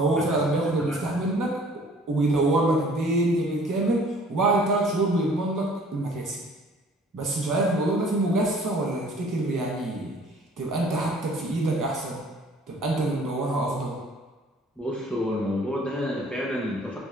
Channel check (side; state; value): both; normal; correlation 0.53